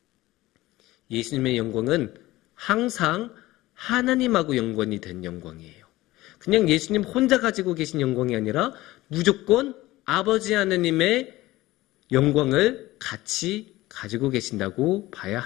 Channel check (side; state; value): right; quieter; 17.9 dB